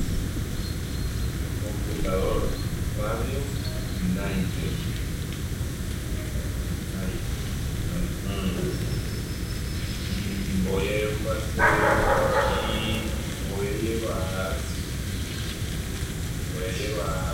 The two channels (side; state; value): both; identical; correlation 1.00